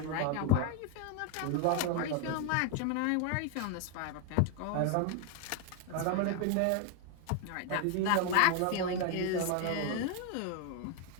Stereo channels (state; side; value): different; both; correlation 0.01